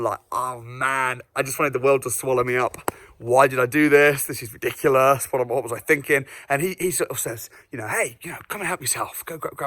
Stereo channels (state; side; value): identical; both; correlation 1.00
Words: like, oh man, I just wanted the world to swallow me up. Why did I do this? This is ridiculous. What was I thinking? And he sort of says, hey, come and help yourself. Go